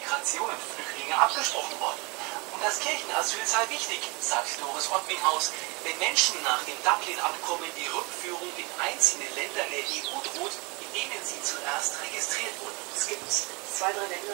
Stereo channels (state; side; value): quieter; left; 28.2 dB